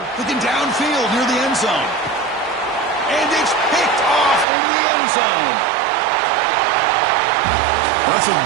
Looking downfield near the end zone. And it's picked off in the end zone. That's a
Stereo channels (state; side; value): drops out; left; at 4.5 s